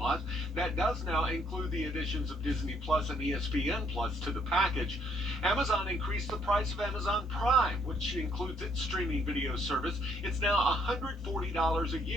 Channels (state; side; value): normal; both; correlation 0.68